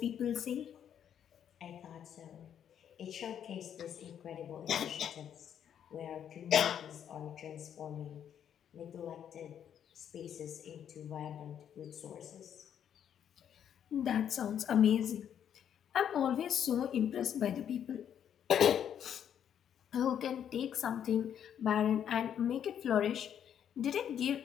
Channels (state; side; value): quieter; right; 9.2 dB